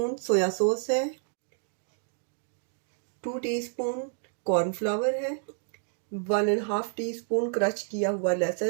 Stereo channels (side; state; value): left; silent; 58 dB below the other